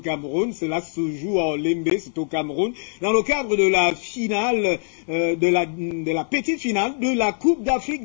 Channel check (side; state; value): right; silent; 58 dB below the other